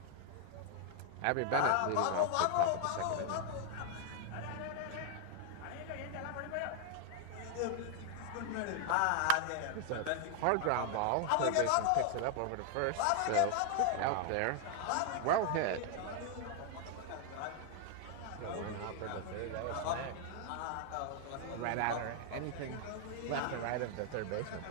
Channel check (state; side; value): different; both; correlation 0.00